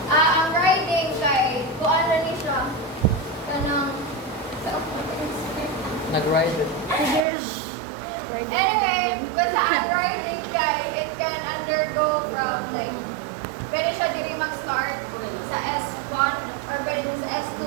Ang riding kay, kuan na ni siya. Kanang, Nag-ride it. anyway, basta ang riding kay, it can undergo from like, pwede siya diri mag-start sa S1 or pwede sa S2.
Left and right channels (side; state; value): left; drops out; at 7.2 s